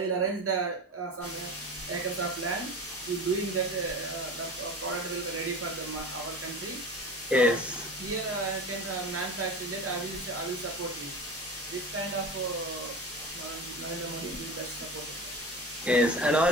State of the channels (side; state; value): both; normal; correlation 0.32